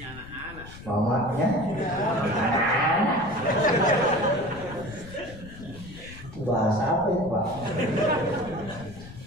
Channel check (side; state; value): left; noise; rumble, 16 dB below the sound